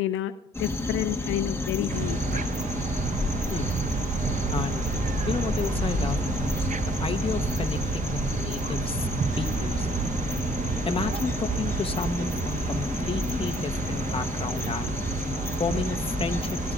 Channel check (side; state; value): both; normal; correlation 0.60